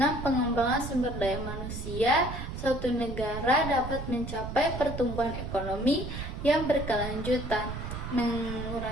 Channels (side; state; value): right; noise; rumble, 7 dB below the sound